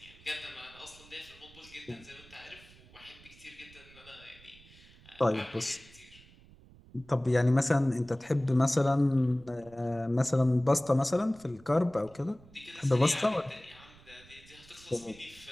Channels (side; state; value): right; noise; rumble, 24 dB below the sound